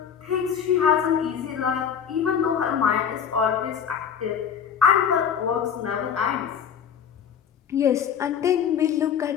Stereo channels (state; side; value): quieter; right; 7.9 dB